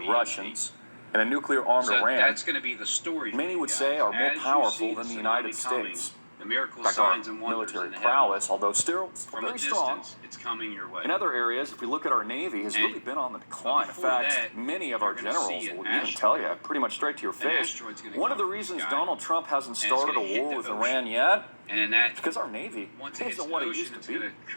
EMP. Russians and a nuclear-armed So Iran, that's going to be the story. for many you would guys. say are more As you powerful see than the tsunami United coming, States. The miracle In fact, our signs and wonders military in the prowess, although still heavens. From a very strong. distance, it's coming your way. In other areas, if we look at our Navy, has And- really been on the decline. In before fact, that, many of you're our gonna generals see an will even tell you, pretty much straight to your face, asteroid's gonna one of the come from the reasons sky, Donald Trump hasn't and it's started gonna a hit war the with ocean. Iran yet And in that, is because our Navy once it hits isn't the what it ocean, used it's to going be. to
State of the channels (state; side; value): inverted; both; correlation -1.00